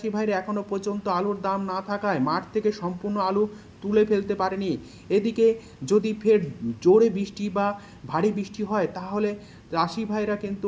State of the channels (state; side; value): identical; both; correlation 1.00